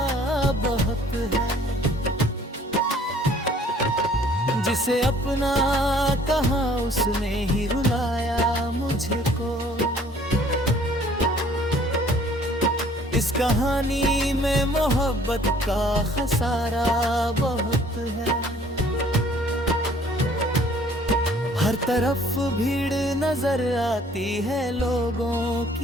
बहुत है। जिसे अपना कहा उसने ही रुलाया मुझको। इस कहानी में मोहब्बत का खसारा बहुत है। हर तरफ भीड़ नजर आती है लोगों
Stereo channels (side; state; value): both; normal; correlation 0.57